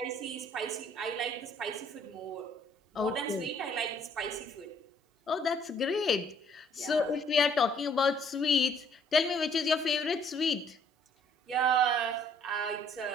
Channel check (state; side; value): normal; both; correlation 0.62